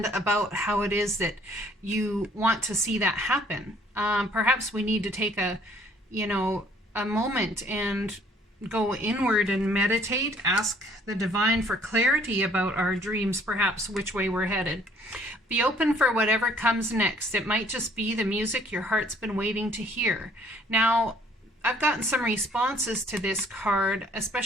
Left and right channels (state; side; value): normal; both; correlation 0.60